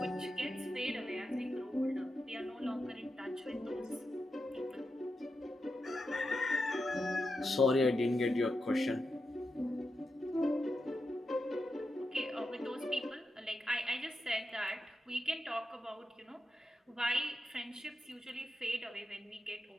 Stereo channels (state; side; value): normal; both; correlation 0.87